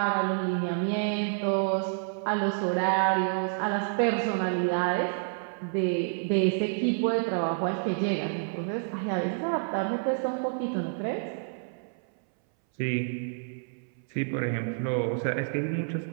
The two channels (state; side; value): silent; left; 59 dB below the other